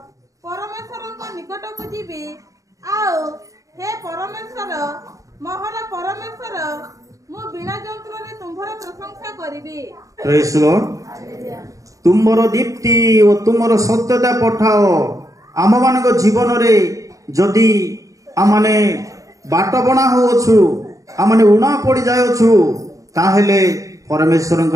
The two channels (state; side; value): late; left; 0.16 ms